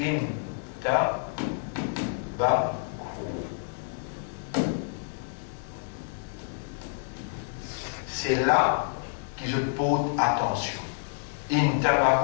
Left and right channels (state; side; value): silent; right; digital silence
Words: c'est là que je pose attention.